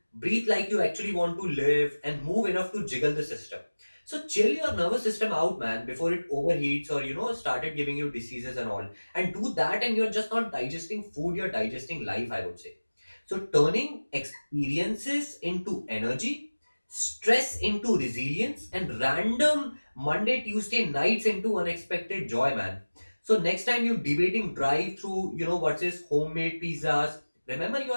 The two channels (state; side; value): inverted; both; correlation -1.00